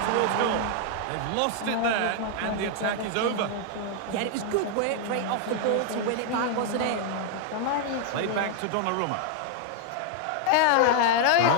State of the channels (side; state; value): both; different; correlation 0.00